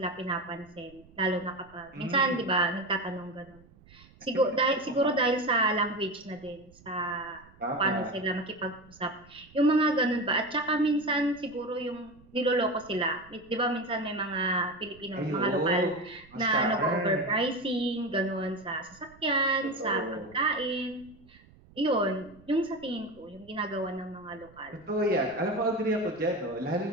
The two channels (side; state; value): right; noise; rumble, 26 dB below the sound